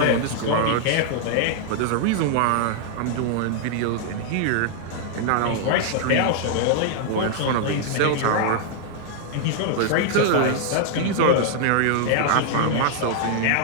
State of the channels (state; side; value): different; both; correlation 0.00